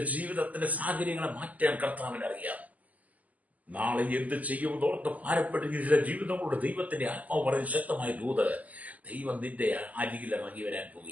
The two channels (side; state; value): left; late; 0.076 ms